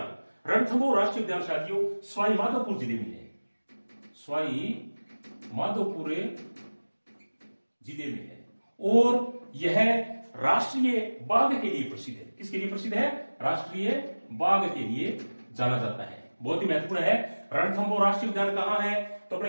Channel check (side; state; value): both; inverted; correlation -1.00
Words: रणथंभौर राष्ट्रीय उद्यान साथियों सवाई माधोपुर जिले में है। सवाई माधोपुर जिले में है और यह राष्ट्रीय बाघ के लिए प्रसिद्ध है। किसके लिए प्रसिद्ध है? राष्ट्रीय बाघ के लिए जाना जाता है। बहुत ही महत्वपूर्ण है। रणथंभौर राष्ट्रीय उद्यान कहां है? तो